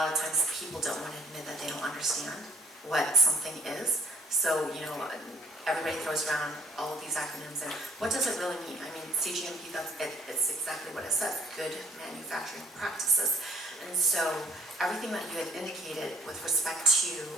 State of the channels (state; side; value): normal; both; correlation 0.58